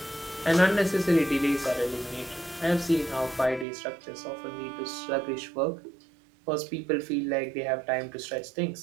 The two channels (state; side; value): drops out; left; at 3.7 s